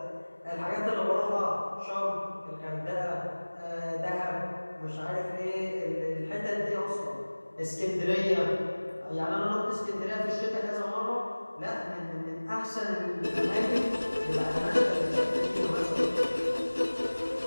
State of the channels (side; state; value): both; inverted; correlation -1.00